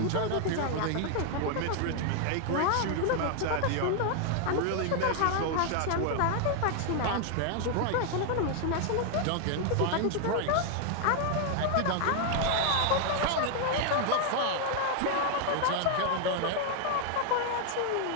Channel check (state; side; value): different; both; correlation 0.00